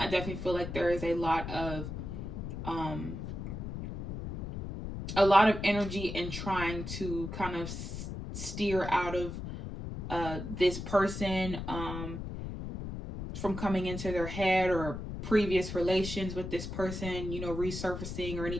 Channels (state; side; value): noise; left; rumble, 7 dB below the sound